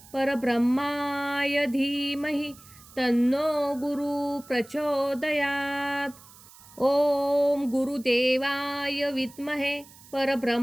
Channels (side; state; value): right; noise; hiss, 22 dB below the sound